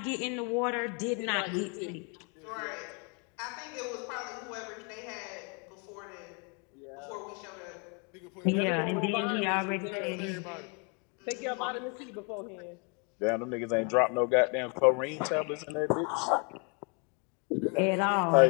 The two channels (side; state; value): right; quieter; 35.2 dB